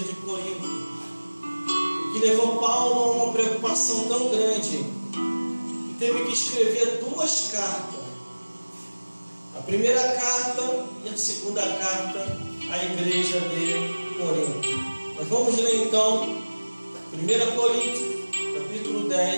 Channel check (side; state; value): both; inverted; correlation -1.00